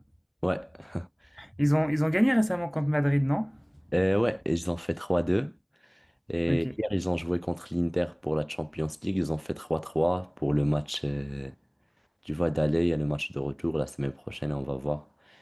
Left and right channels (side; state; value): both; identical; correlation 1.00